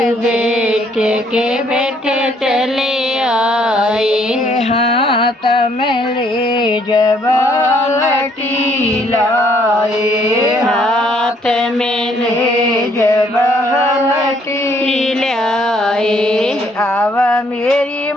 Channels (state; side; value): normal; both; correlation 0.66